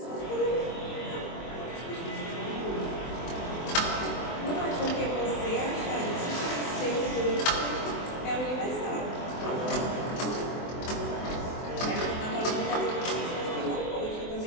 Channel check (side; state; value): right; late; 24 ms